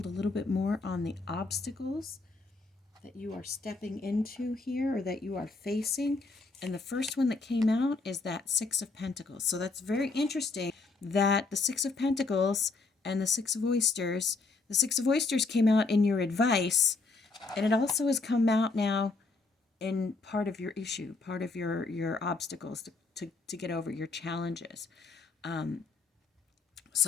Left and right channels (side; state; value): right; quieter; 3.8 dB